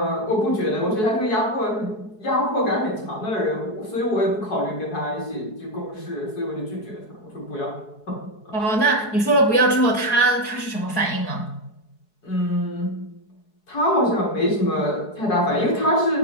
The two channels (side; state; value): right; late; 4.7 ms